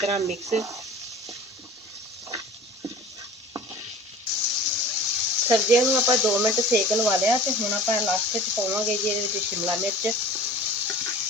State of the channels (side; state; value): both; normal; correlation 0.41